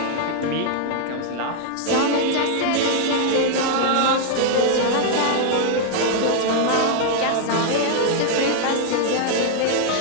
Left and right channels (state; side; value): different; both; correlation 0.00